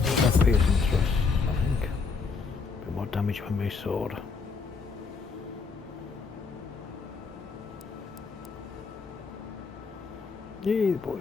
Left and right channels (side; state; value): right; quieter; 4.9 dB